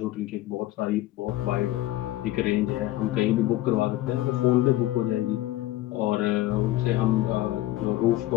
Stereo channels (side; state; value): right; quieter; 15.8 dB